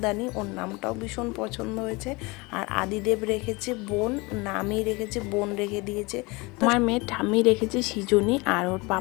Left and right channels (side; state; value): right; quieter; 25.3 dB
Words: ওর নামটাও ভীষণ পছন্দ হয়েছে। আর আদিদেব রেখেছে বোন, নামই রেখেছে বোন রেখে দিয়েছে। আমার মেয়ের ঠাম্মি রেখেছে সৃজনী, আর ওর